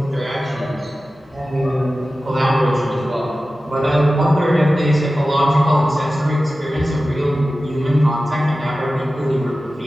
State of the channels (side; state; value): both; normal; correlation 0.95